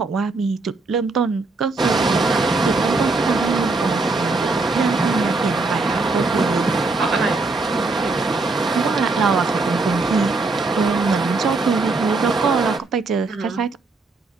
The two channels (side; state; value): left; quieter; 3.6 dB